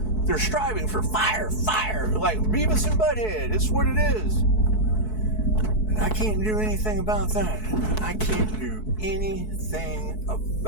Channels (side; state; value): right; late; 4.6 ms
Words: They're striving for fire, like Beavis and Butthead. It's what it is. And I can't do anything about that. I can't do anything